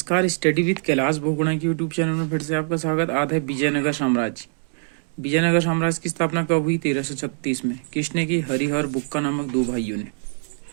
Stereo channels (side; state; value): left; silent; 63 dB below the other